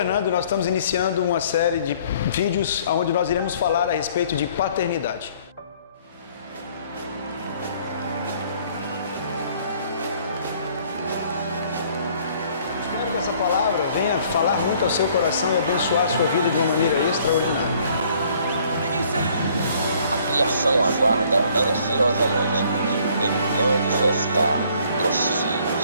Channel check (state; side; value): inverted; both; correlation -0.60